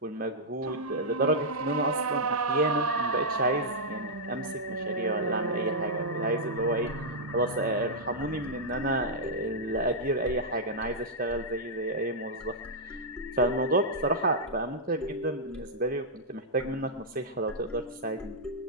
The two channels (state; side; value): normal; both; correlation -0.08